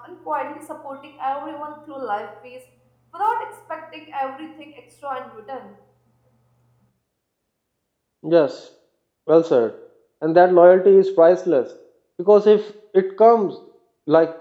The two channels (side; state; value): both; identical; correlation 1.00